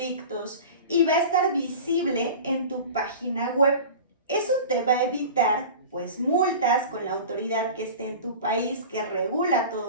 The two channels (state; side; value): inverted; both; correlation -0.36